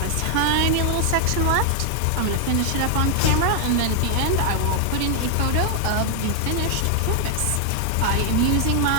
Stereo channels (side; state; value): both; different; correlation 0.00